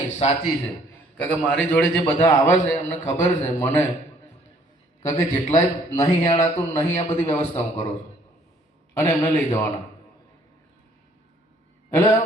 સાચી છે. કારણ કે મારી જોડે જે બધા આવે છે એમને ખબર છે મને, કારણ કે જેટલાય નહીં હેડાતું નહીં આ બધી વ્યવસ્થા હું કરું છું અને એમને લઈ જવાના. એટલે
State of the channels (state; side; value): normal; both; correlation 0.62